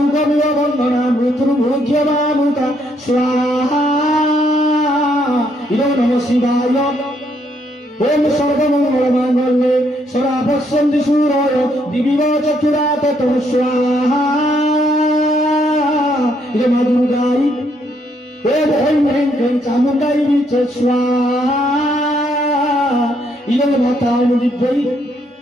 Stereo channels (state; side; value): normal; both; correlation 0.72